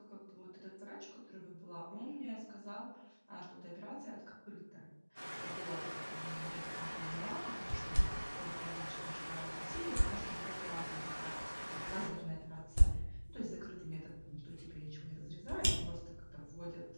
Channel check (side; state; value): both; inverted; correlation -1.00